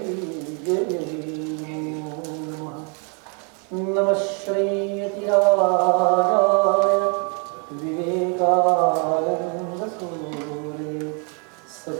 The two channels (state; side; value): quieter; left; 37.9 dB